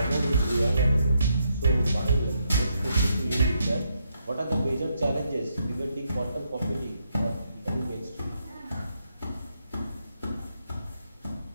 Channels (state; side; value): inverted; both; correlation -0.78